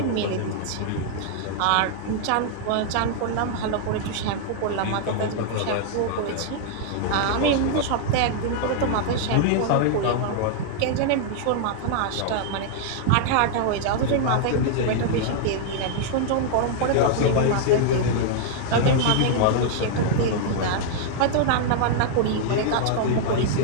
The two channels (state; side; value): different; both; correlation -0.01